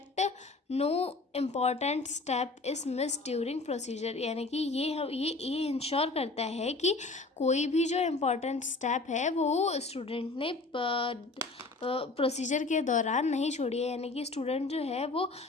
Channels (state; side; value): quieter; right; 3.5 dB